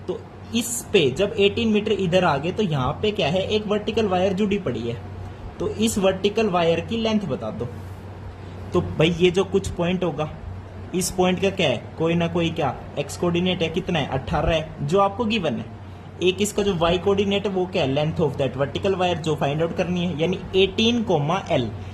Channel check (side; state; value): both; identical; correlation 1.00